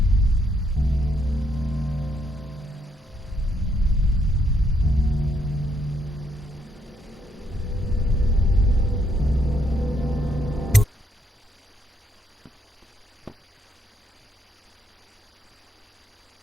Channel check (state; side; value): normal; both; correlation 0.73